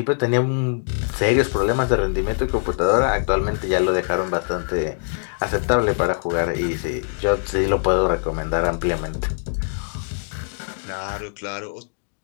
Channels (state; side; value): silent; right; digital silence